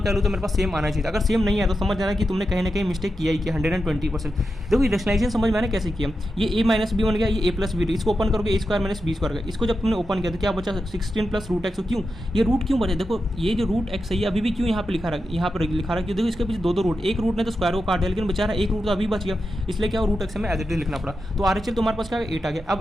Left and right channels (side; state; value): both; normal; correlation 0.89